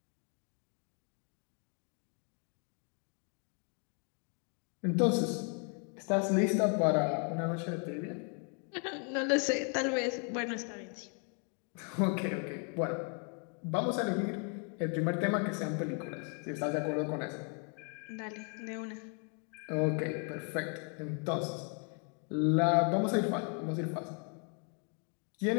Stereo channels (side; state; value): right; quieter; 39.9 dB